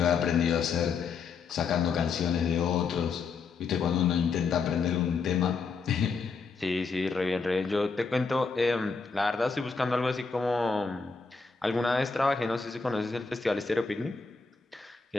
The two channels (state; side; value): quieter; right; 4.9 dB